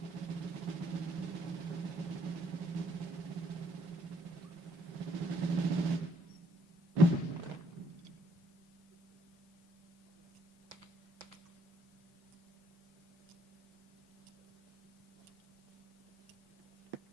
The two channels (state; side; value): normal; both; correlation 0.68